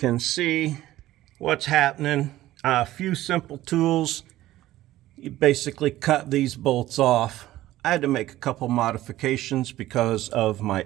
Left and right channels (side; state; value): left; quieter; 15.3 dB